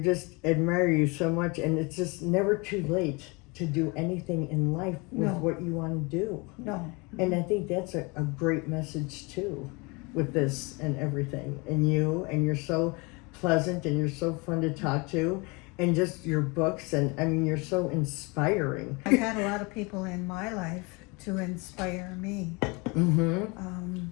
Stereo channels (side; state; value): right; quieter; 28.0 dB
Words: admire you so much, and it's just never too late to do anything in life with No. what you want to do. No. And I think that's a great message too, with this and everything. And you're so pleasant, and you're so fun to talk to, and just your books, and I mean, you're so inspiring. I've had a lot of people in my life to inspire me. Mm-hmm.